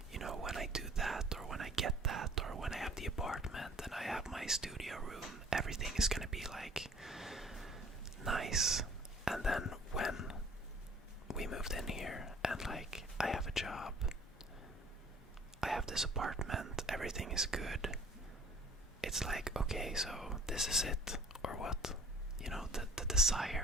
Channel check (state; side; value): normal; both; correlation 0.51